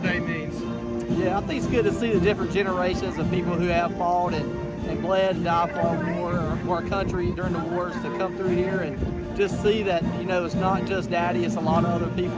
means? Yeah, I think it's good to see the different generations of people who have fought and bled and died for our country during the wars to come through here and just see that, it's not just Daddy, it's a lot of other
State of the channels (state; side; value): identical; both; correlation 1.00